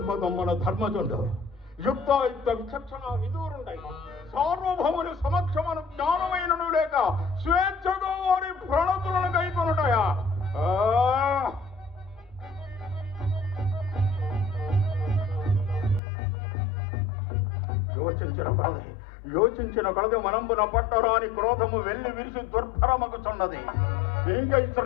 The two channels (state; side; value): drops out; right; at 16.0 s